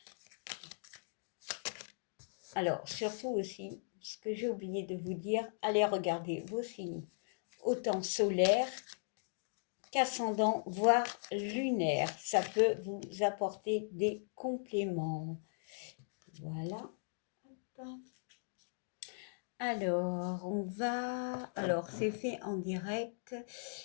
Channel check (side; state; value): right; silent; digital silence